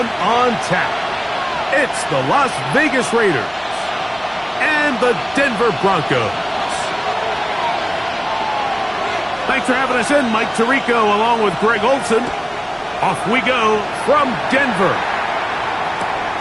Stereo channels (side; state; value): both; identical; correlation 1.00